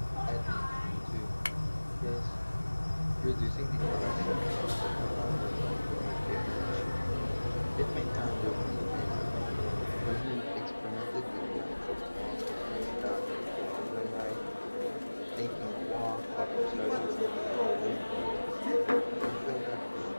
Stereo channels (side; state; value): both; inverted; correlation -1.00